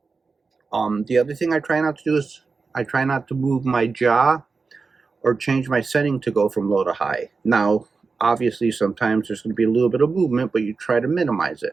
The other thing I try not to do is I try not to move my jaw or change my setting to go from low to high. Now, obviously, sometimes there's going to be a little bit of movement, but you try to minimize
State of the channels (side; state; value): left; quieter; 4.5 dB